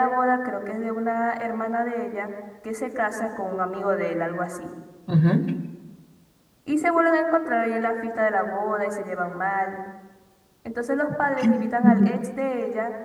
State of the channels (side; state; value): both; identical; correlation 1.00